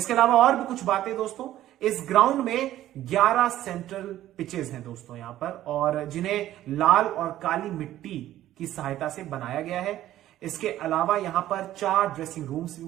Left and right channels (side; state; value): left; quieter; 13.5 dB